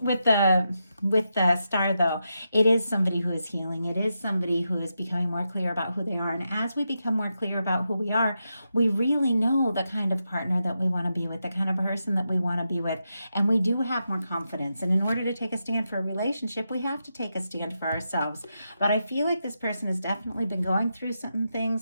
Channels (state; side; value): inverted; both; correlation -0.86